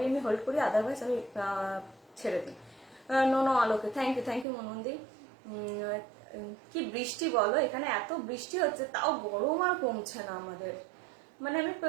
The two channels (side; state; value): left; drops out; at 4.5 s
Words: আমি হোল্ড করি, আদারওয়াইজ আমি ছেড়ে দিই। নো নো আলোকে, থ্যাংক ইউ মনন্দি। কি বৃষ্টি বলো, এখানে এত বৃষ্টি হচ্ছে তাও গরম আর কমছে না আমাদের। মানে আমি